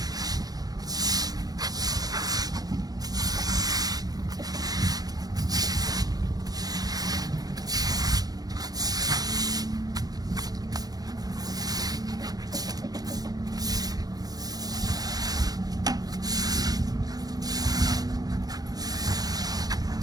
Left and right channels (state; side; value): late; left; 0.19 ms